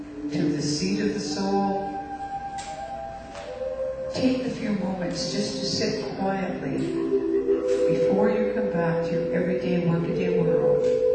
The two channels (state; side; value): identical; both; correlation 1.00